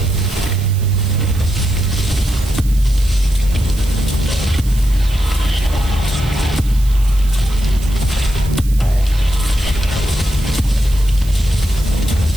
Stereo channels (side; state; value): right; noise; hiss, 17 dB below the sound